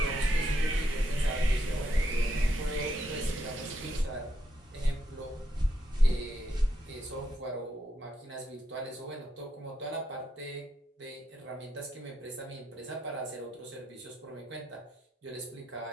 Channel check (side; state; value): both; normal; correlation 0.80